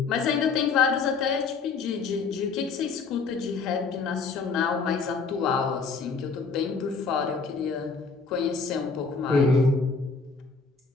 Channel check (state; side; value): quieter; right; 4.8 dB